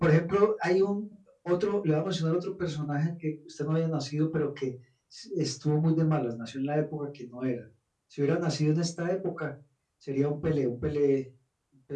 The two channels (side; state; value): both; identical; correlation 1.00